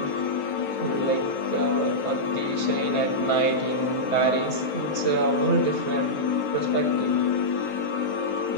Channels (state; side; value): late; right; 9.2 ms